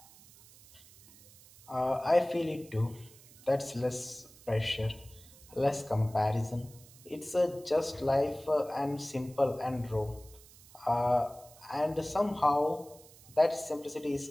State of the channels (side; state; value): right; noise; hiss, 23 dB below the sound